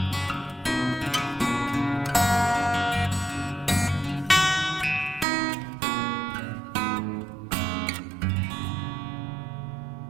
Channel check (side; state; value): left; drops out; at 5.2 s